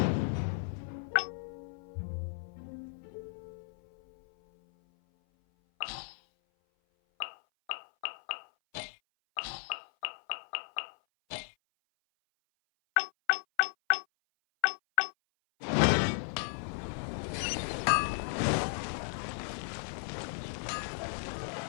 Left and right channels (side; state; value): right; silent; 55 dB below the other